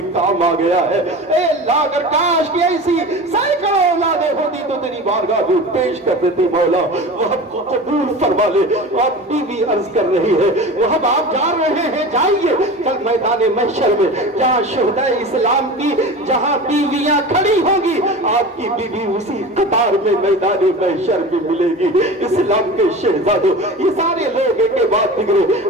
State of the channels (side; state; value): both; normal; correlation 0.33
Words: کام آ گیا ہے. اے اللہ اگر کاش کی ایسی سینکڑوں اولادیں ہوتی تو تیری بارگاہ میں پیش کر دیتی مولا. وہب کو قبول فرما لے. آپ بیوی عرض کر رہی ہے وہب آپ جا رہے ہیں جائیے, کل میدان محشر میں جہاں شہدائے اسلام کی جہاں بیویاں کھڑی ہوں گی آپ کی بیوی اسی قطار میں میدان محشر میں ملے گی. اسلام کے شہزادوں یہ سارے لوگ ایک کے بعد بگڑے